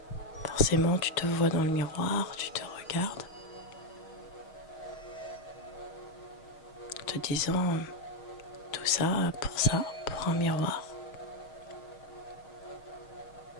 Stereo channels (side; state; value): right; late; 6.4 ms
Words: Forcément, tu te vois dans le miroir, tu te regardes, te disant tout ça, pour un miroir.